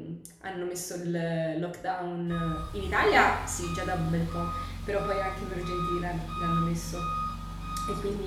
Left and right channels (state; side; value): identical; both; correlation 1.00